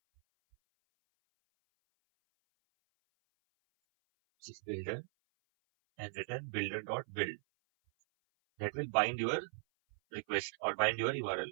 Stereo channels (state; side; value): silent; left; 52 dB below the other